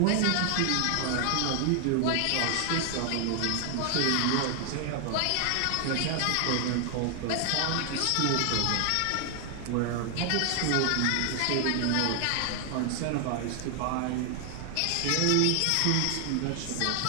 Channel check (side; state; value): both; different; correlation 0.00